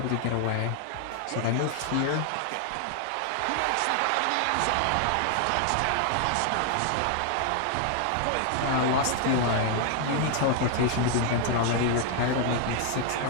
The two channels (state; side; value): different; both; correlation 0.00